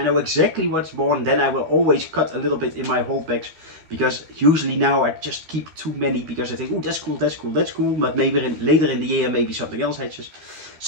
know exactly what's born, then I will always cut a little bit in my holdbacks, because usually now I just keep too many because I think, oh, that's cool, that's cool, that's cool, but maybe later in the year, maybe something else hatches.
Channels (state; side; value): late; left; 13 ms